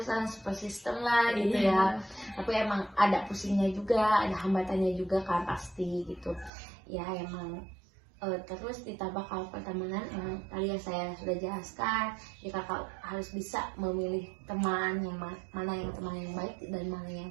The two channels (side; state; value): left; drops out; at 6.5 s